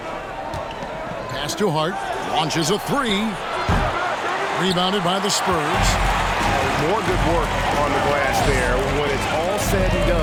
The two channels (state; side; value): identical; both; correlation 1.00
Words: Pass to Hart. Launches a 3. Rebounded by the Spurs. More good work on the glass there. When it's all said and